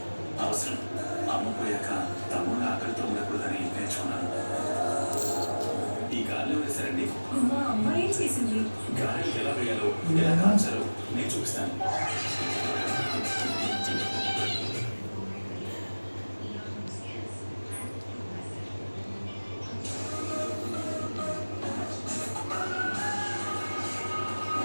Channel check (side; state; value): both; inverted; correlation -1.00